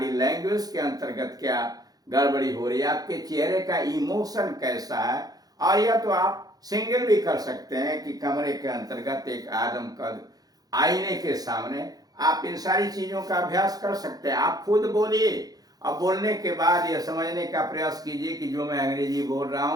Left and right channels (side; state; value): left; late; 0.18 ms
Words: लैंग्वेज के अंतर्गत क्या गड़बड़ी हो रही है, आपके चेहरे का इमोशन कैसा है। और यह तो आप सिंगल भी कर सकते हैं कि कमरे के अंतर्गत एक आदमकद आईने के सामने आप इन सारी चीजों का अभ्यास कर सकते हैं। आप खुद बोलिए और बोलने के बाद यह समझने का प्रयास कीजिए कि जो मैं अंग्रेजी बोल रहा